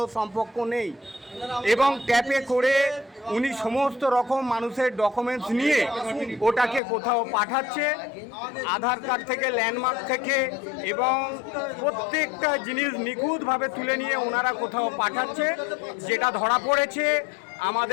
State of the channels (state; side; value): drops out; right; at 6.8 s